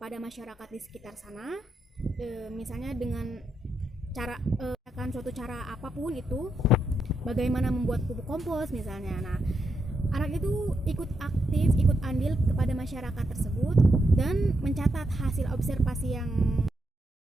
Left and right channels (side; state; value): both; normal; correlation 0.82